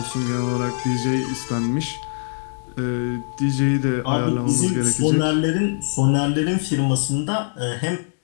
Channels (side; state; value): right; silent; digital silence